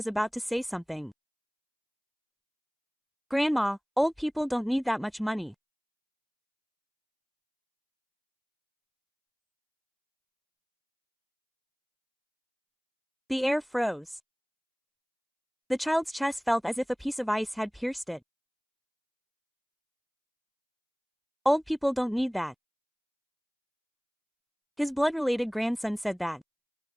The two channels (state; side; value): identical; both; correlation 1.00